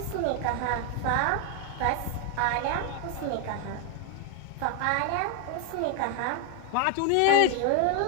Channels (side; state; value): both; different; correlation 0.01